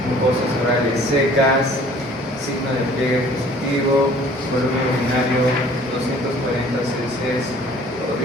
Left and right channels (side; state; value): both; normal; correlation 0.52